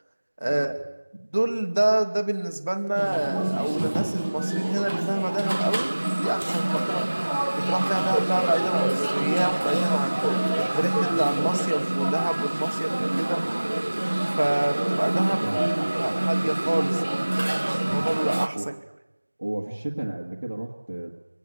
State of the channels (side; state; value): both; inverted; correlation -1.00